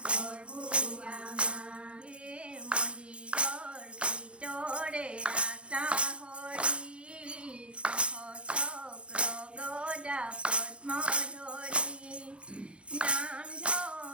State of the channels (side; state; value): left; late; 0.059 ms